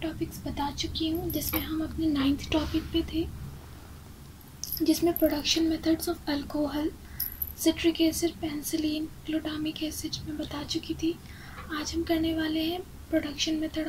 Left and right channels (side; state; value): both; identical; correlation 1.00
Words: बता चुकी हूँ, जिसमें हम अपने 9th टॉपिक पे थे, जिसमें production methods of alcohol, citric acid, penicillin, glutamic acid में बता चुकी थी। आज हम करने वाले हैं प्रोडक्शन